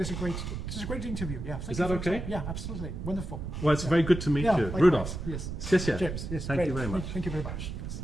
is a great interview. Yeah, thank Is you that for your okay? time. Yeah, absolutely, wonderful. Well, it's very good to meet Yeah, you. likewise. Rudolph. Yes. 谢谢. James. Yes. Thank great. you very much. Thank you very much. Yes.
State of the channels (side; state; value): right; noise; rumble, 6 dB below the sound